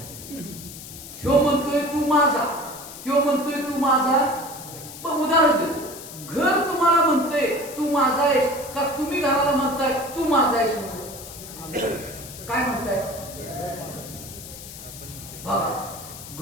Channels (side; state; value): left; noise; hiss, 13 dB below the sound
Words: ह्यो म्हणतोय तू माझा, त्यो म्हणतोय तू माझा. पण उदाहरण देतो, घर तुम्हाला म्हणतंय तू माझा आहेस का तुम्ही घराला म्हणताय तू माझा आहेस? काय म्हणताय? बघा,